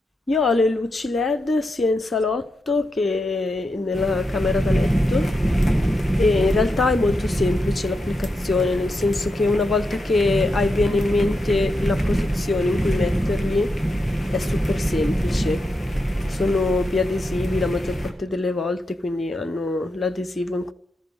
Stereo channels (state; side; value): normal; both; correlation 0.86